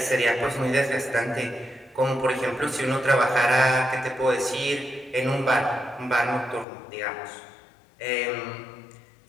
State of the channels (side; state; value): right; drops out; at 6.7 s